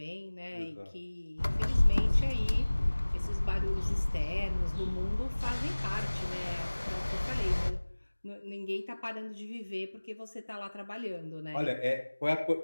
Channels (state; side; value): inverted; both; correlation -1.00